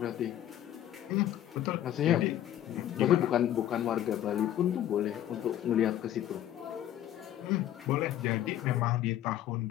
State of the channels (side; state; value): right; quieter; 12.0 dB